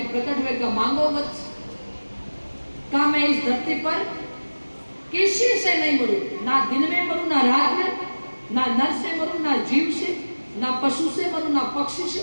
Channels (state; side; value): inverted; both; correlation -1.00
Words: प्रकट हुए का मांगो वत्स, का मैं इस धरती पर किसी से नहीं मरूं, ना दिन में मरूं ना रात में, ना नर से मरूं ना जीव से, ना पशु से मरूं ना पक्षी